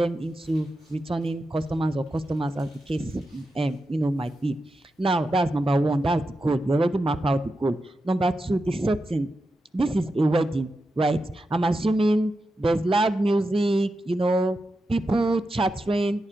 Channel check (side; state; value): both; normal; correlation 0.89